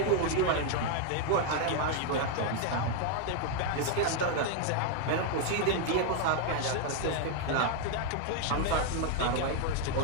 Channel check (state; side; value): different; both; correlation 0.00